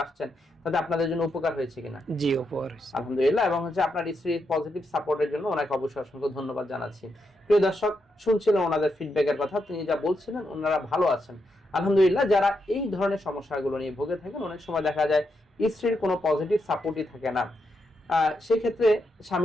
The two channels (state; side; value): normal; both; correlation 0.82